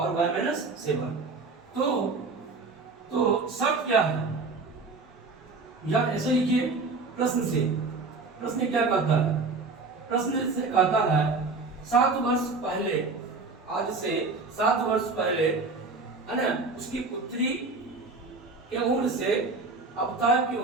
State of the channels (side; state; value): left; quieter; 3.9 dB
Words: y माइनस 7। तो शर्त क्या है? या ऐसे लिखिए प्रश्न क्या कहता है? प्रश्न से कहता है 7 वर्ष पहले, आज से 7 वर्ष पहले, है ना, उसकी पुत्री के उम्र से आफ्ताब की